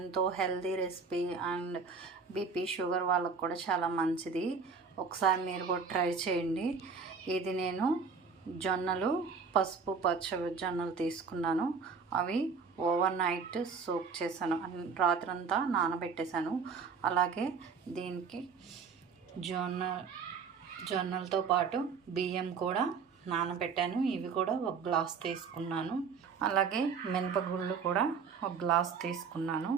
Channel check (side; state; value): left; quieter; 5.4 dB